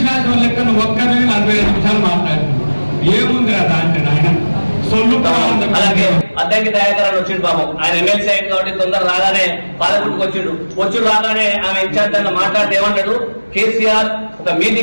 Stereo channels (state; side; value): inverted; both; correlation -1.00